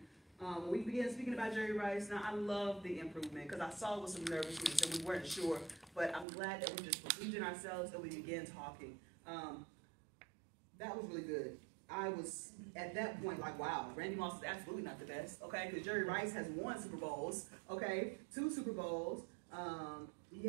When we began speaking about Jerry Rice, now I love the improvement because I saw it with some nervousness and we weren't sure, but I'm glad that we just believed in ourselves and we began talking. That was really good. I was, at that point, like, wow, Randy Moss is absolutely not the best, okay? Because Jerry Rice has 1 Super Bowls, okay? 2 Super Bowls. He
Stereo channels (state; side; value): drops out; left; at 6.2 s